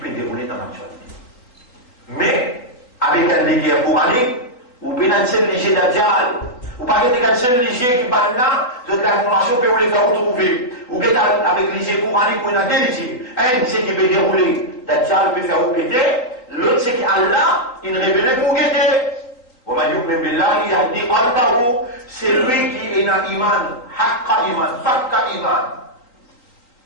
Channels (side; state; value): right; late; 3.9 ms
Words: déroulée dans l'actualité. Mais, avec un guerre coranique, vous pouvez un seul léger d'Adjal. Vous ne pouvez pas un seul léger qui parle là, de l'information que vous les faire retrouver. Vous pouvez avec léger coranique, vous avez deux légers. Un, c'est qui peut dérouler d'Adjal, peut faire vous péter. L'autre, c'est qu'Allah, il révèle pour guetter. C'est lui qui est dans l'iman, haqqa iman, fakka iman.